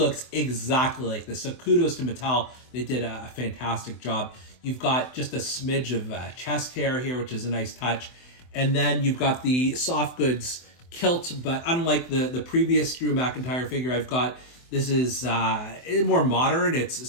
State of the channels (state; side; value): late; right; 24 ms